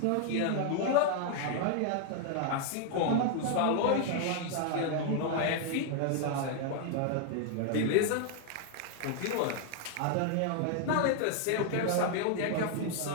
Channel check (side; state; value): both; different; correlation 0.00